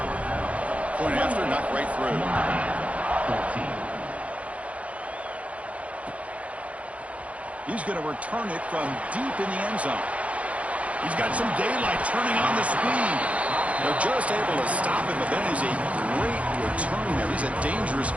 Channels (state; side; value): late; left; 0.065 ms